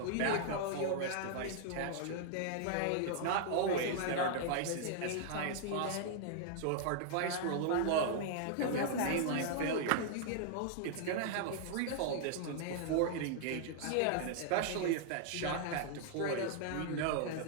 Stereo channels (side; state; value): both; different; correlation -0.01